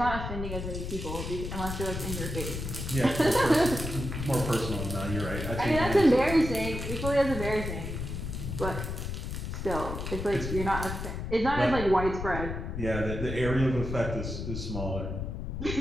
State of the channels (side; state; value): left; noise; rumble, 5 dB below the sound